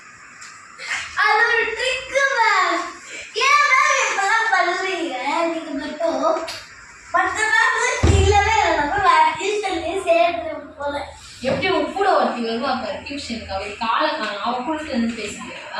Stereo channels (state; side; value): identical; both; correlation 1.00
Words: அது ஒரு ட்ரிக் மேம் ஏன் மேம் இப்பெல்லாம் பண்ணுவீங்க நீங்க மட்டும் மற்றெல்லாம் இல்லவே இல்லை வேற டியூஷன்லேயே சேர்த்து போல எப்படி உன் கூட ஒருத்தி வருவா பாரு டியூஷனுக்கு அவள் காலை காணும் அவள் கூட இருந்து